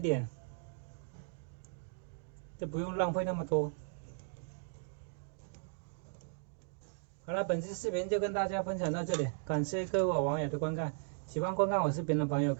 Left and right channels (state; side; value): silent; left; digital silence